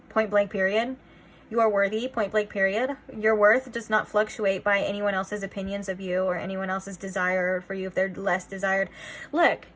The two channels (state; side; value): identical; both; correlation 1.00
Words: Point blank period. You are worthy, point blank period. Your worth does not fluctuate by anyone else's opinions of you or anyone else's desire for you if they're less desired. Look,